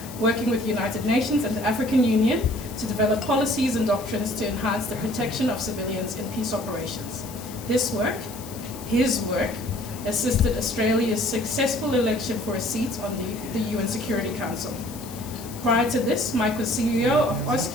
working with the United Nations and the African Union to develop policies and doctrines to enhance the protection of civilians in peace operations. This work, his work, assisted Australia's successful election for a seat on the UN Security Council. Prior to this, Mike was CEO of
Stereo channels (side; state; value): left; noise; hiss, 15 dB below the sound